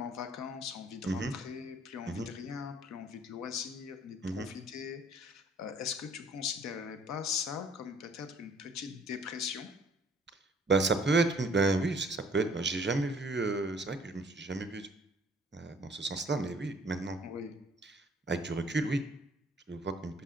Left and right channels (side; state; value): both; normal; correlation 0.58